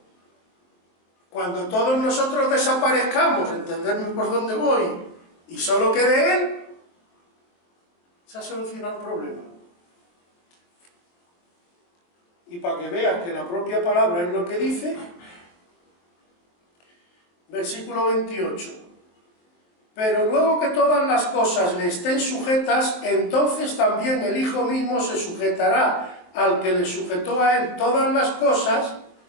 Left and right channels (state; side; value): late; right; 23 ms